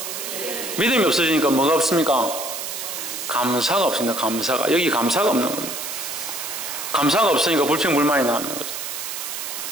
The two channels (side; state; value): right; noise; hiss, 6 dB below the sound